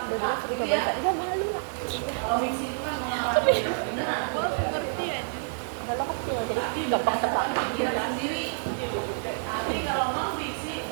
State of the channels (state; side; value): silent; left; digital silence